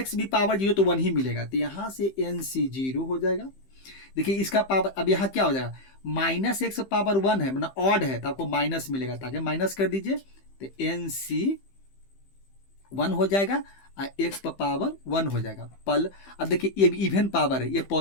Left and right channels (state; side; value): late; right; 15 ms